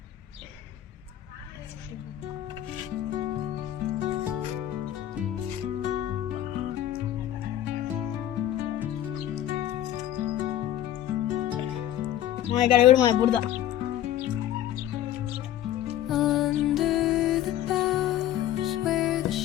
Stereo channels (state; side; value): quieter; right; 12.2 dB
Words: ఇక్కడ కూడా మన బురద. Under the boughs where the